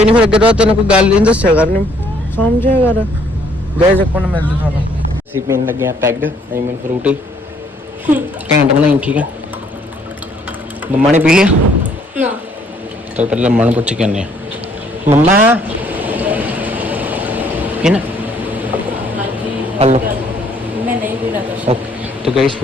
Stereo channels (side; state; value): both; normal; correlation 0.64